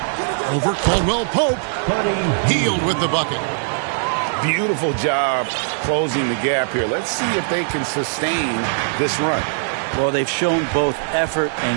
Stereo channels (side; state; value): left; silent; digital silence